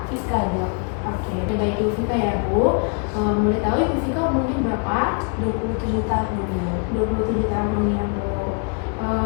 Fiska Dok. Oke, baik Ibu Fika ya Bu. Boleh tahu Ibu Fika umurnya berapa? 27 tahun. 27 tahun ya Bu.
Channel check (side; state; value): right; quieter; 39.5 dB